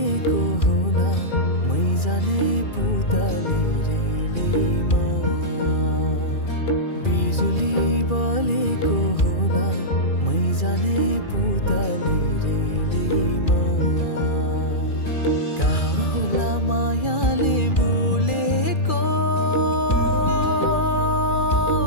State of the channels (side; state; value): right; late; 2.4 ms